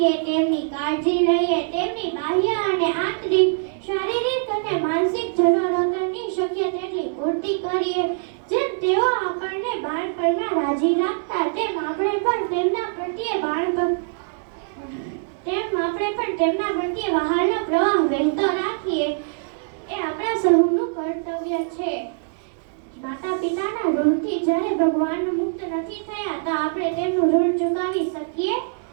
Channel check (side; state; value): left; silent; 63 dB below the other